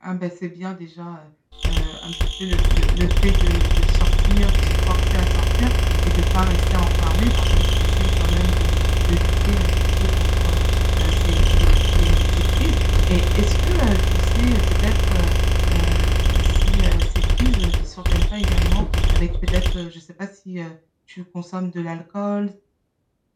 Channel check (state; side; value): identical; both; correlation 1.00